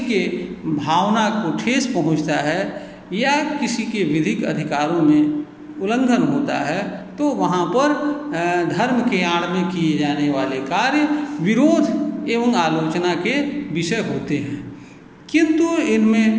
के भावना को ठेस पहुंचता है या किसी के विधिक अधिकारों में उल्लंघन होता है तो वहाँ पर धर्म के आड़ में किए जाने वाले कार्य विरोध एवं आलोचना के विषय होते हैं। किंतु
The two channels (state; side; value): identical; both; correlation 1.00